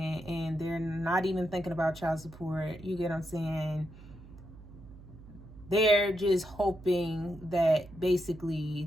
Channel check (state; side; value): noise; right; hum, 18 dB below the sound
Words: and they're not even thinking about child support. You get what I'm saying? They're just hoping that